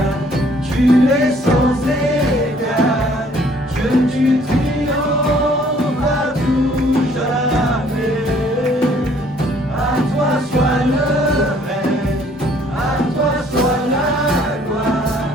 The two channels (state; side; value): normal; both; correlation 0.60